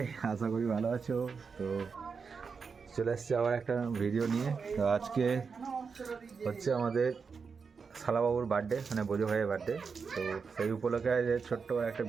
আশা করি ভালো আছো। তো চলে এসছি আবার একটা ভিডিও নিয়ে। তো আজকে হচ্ছে আমাদের শালাবাবুর বার্থডে, মানে বোঝো ভাইয়ের বার্থডে। তো সেই উপলক্ষে যে ছোট্ট একটা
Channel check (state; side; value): quieter; left; 5.4 dB